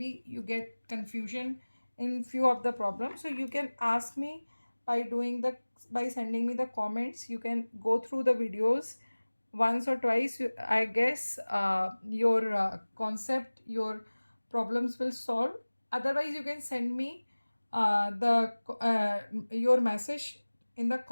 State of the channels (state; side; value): inverted; both; correlation -1.00